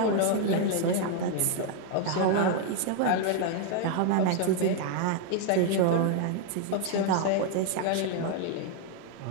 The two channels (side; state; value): both; different; correlation 0.00